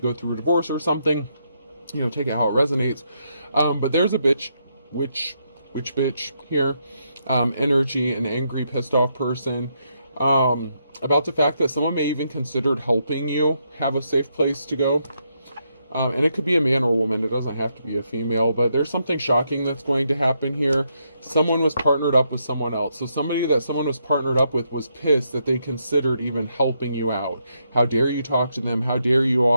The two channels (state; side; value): inverted; both; correlation -0.78